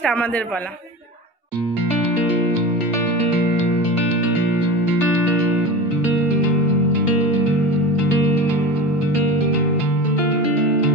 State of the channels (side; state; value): both; normal; correlation 0.29